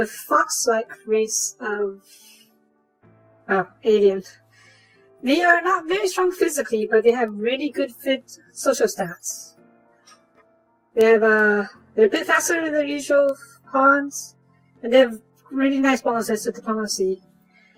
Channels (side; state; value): both; identical; correlation 1.00